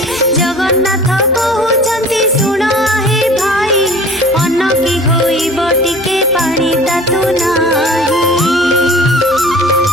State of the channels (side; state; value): both; normal; correlation 0.44